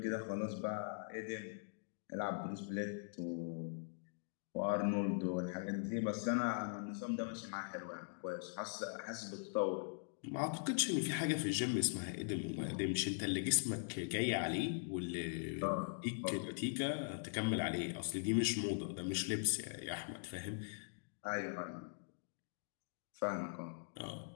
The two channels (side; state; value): right; silent; digital silence